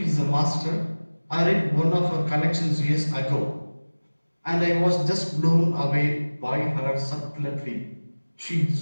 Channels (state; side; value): inverted; both; correlation -1.00